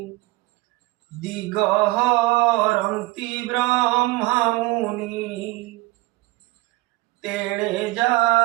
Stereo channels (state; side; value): quieter; left; 21.1 dB